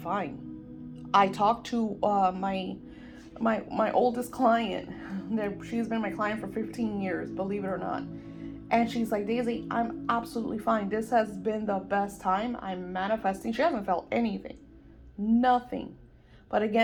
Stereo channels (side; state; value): both; identical; correlation 1.00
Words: I talked to my oldest client. That she's been my client for 15 years, believe it or not. And she's like, Daisy, I'm absolutely fine. This has been the best time. I'm manifesting. She hasn't felt anything, nothing. But